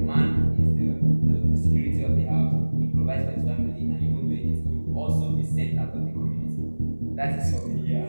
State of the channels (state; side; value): inverted; both; correlation -1.00